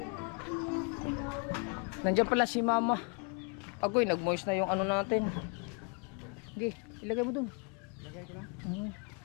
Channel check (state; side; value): quieter; right; 34.9 dB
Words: Nandiyan pala si Mama. Agoy, nag-moist na yung ano natin. Sige, ilagay mo dun. Lagay ko na.